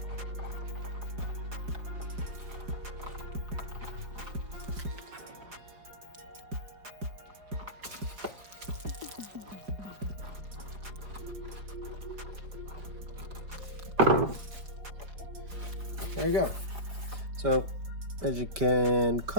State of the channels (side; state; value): left; late; 4.7 ms